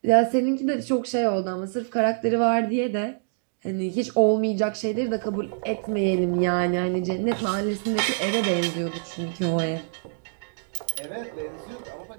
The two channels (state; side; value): silent; left; digital silence